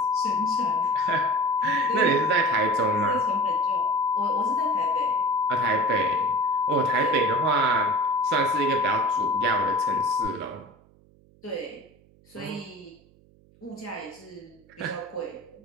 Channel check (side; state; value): right; noise; hum, 29 dB below the sound